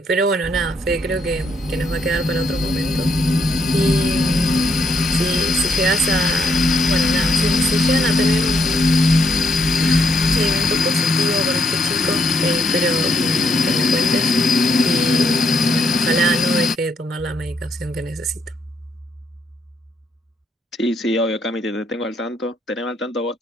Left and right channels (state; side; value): normal; both; correlation 0.75